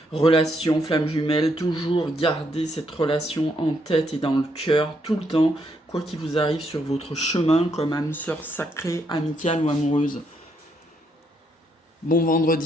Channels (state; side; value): normal; both; correlation 0.75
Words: relations flamme jumelle. Toujours garder cette relation en tête et dans le cœur tout le temps, quoi qu'il vous arrive sur votre chemin comme âme sœur sacrée, amicale ou amoureuse. Bon